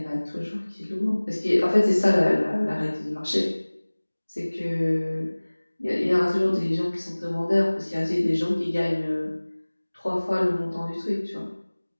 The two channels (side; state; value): both; inverted; correlation -1.00